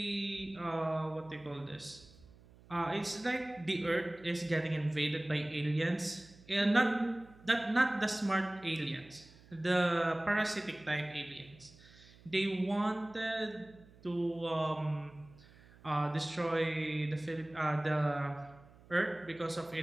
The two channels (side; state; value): right; noise; hum, 24 dB below the sound